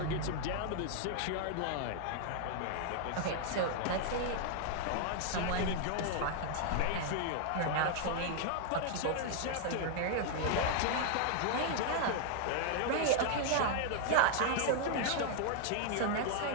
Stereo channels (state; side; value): different; both; correlation 0.00